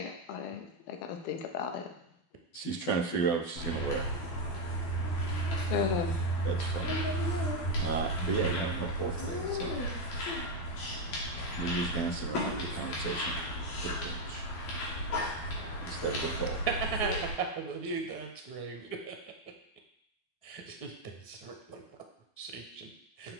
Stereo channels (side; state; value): right; late; 12 ms